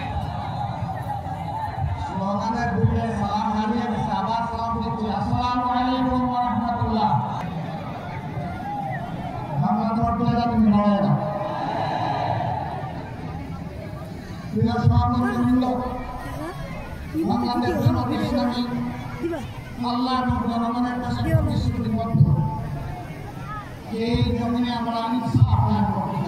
স্লোগানের দিকে সালাম হারিয়ে আবার সালাম দিচ্ছি। আসসালামু আলাইকুম ওয়া রাহমাতুল্লাহ। বাংলা দরবারে যাবেন না প্রিয় সহকর্মীবৃন্দ, বাংলাদেশ জামাত ইসলামী আল্লাহর জনগণের কাছে প্রতিশ্রুতিবদ্ধ। এই জমিনে আমরা ইনসাফ কায়েম করতে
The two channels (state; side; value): identical; both; correlation 1.00